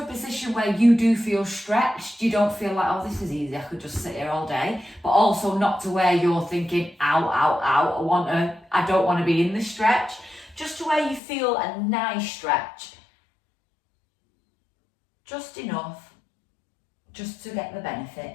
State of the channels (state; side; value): drops out; right; at 11.2 s